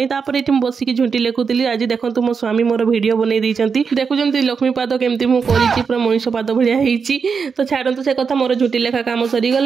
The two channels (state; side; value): quieter; left; 5.7 dB